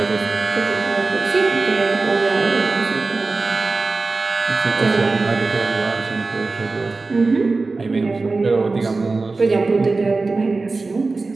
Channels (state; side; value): quieter; left; 3.7 dB